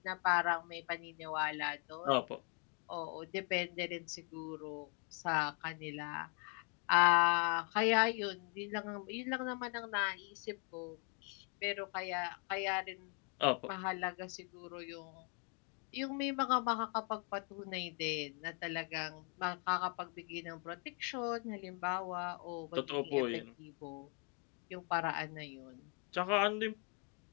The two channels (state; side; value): quieter; right; 37.0 dB